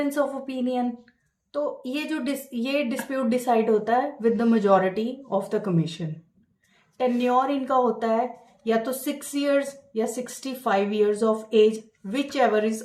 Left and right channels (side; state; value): both; identical; correlation 1.00